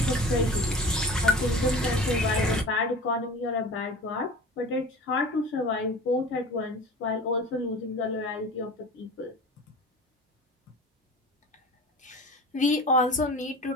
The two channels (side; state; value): both; normal; correlation 0.38